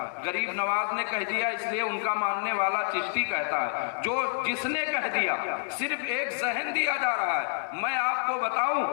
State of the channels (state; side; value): silent; right; 59 dB below the other